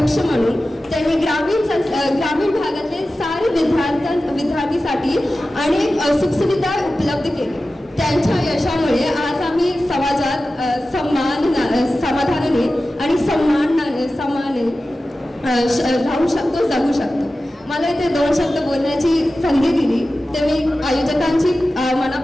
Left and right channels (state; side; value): normal; both; correlation 0.94